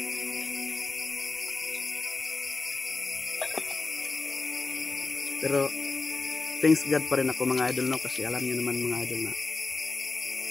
Pero thanks God pa rin ako mga idol, no? Kasi alam niyo naman mga idol na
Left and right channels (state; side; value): quieter; right; 3.7 dB